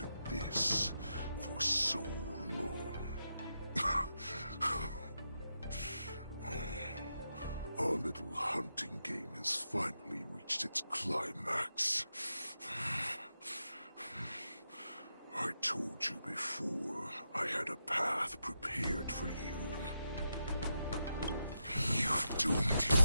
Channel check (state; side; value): inverted; both; correlation -0.86